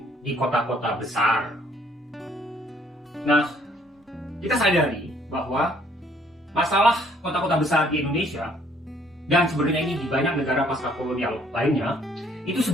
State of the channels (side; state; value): both; normal; correlation 0.63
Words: di kota-kota besar. Nah, kita sadari bahwa masalah kota-kota besar di Indonesia dan sebenarnya ini di banyak negara pasca kolonial lainnya itu